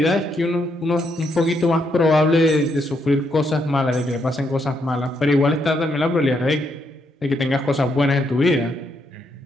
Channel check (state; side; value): normal; both; correlation 0.77